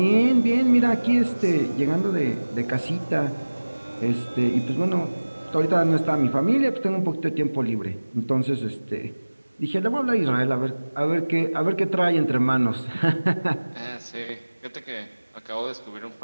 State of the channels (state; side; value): inverted; both; correlation -1.00